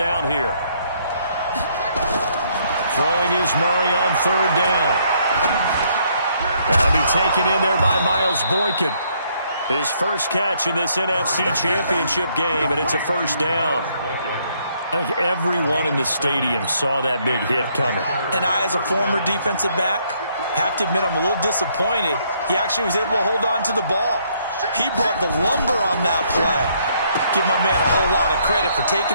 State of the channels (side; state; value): both; inverted; correlation -0.69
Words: here. Throwing is Murray on 3rd down. That'll be taken in there by Miles Boykin. His first catch in this NFC Championship game, and it's a 1st down. I think everyone in the stadium saw that big hit coming. And I, as a former defensive back, Have to admit, I'm a little disappointed. He actually was able to hold on to the ball. He brought the lumber on that play. Give my man a whole lot of credit for